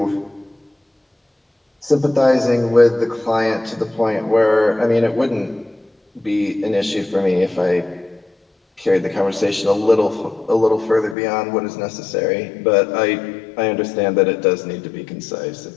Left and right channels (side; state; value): right; drops out; at 11.2 s